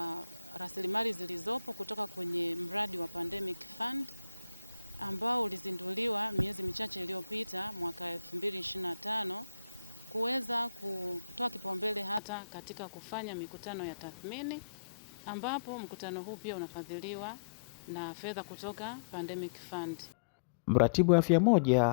rasilimali zilizopo kutoka kwenye mradi wa Pandemic Fund ambao ulizinduliwa miezi michache iliyopita mwaka 2025 kuweza kutoa kipaumbele hata katika kufanya mikutano ya tathmini, ambapo mkutano huu pia unafadhiliwa na fedha kutoka Pandemic Fund. Mratibu wa afya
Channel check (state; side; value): drops out; right; at 12.2 s